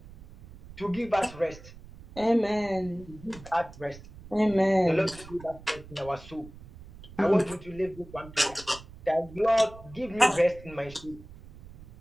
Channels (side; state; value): right; noise; rumble, 18 dB below the sound